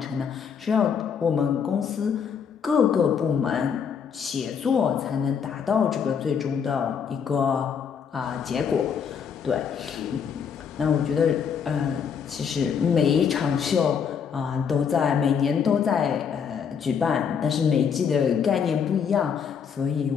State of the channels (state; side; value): quieter; right; 7.0 dB